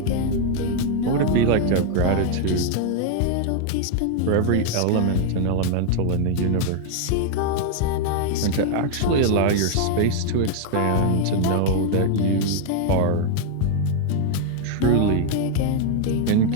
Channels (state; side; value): different; both; correlation 0.00